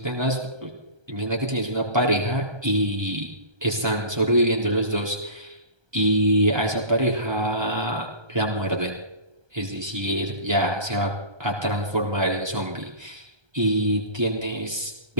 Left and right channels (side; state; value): left; late; 1.3 ms